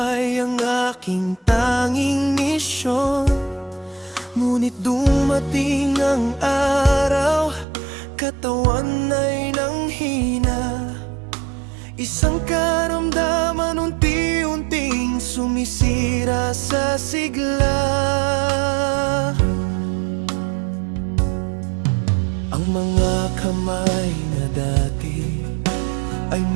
ang aking tanging misyon. Ngunit dumating ang araw, katawan ay nanghina. Isang karamdaman unti-unting sumisira sa sigla. Ang mga kamay na dati ay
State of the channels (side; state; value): left; drops out; at 7.7 s